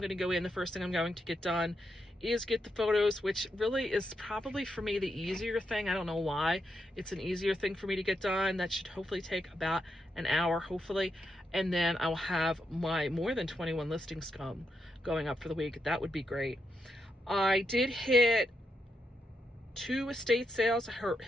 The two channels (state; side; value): normal; both; correlation 0.83